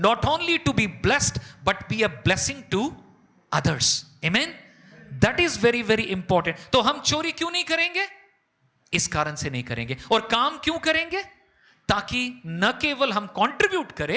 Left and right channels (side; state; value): both; identical; correlation 1.00